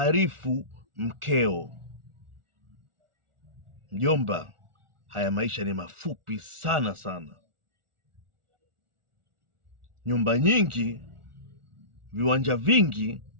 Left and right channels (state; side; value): late; left; 1.4 ms